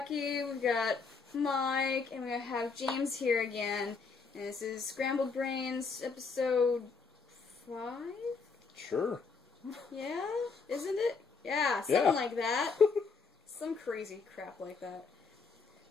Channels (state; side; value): quieter; right; 4.9 dB